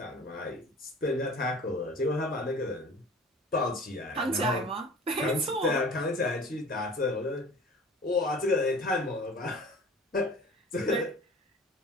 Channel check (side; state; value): both; normal; correlation 0.44